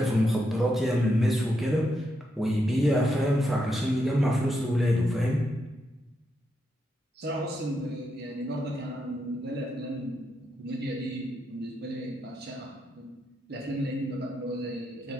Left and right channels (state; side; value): normal; both; correlation 0.82